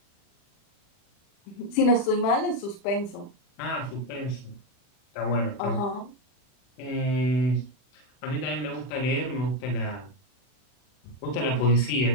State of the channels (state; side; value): late; right; 40 ms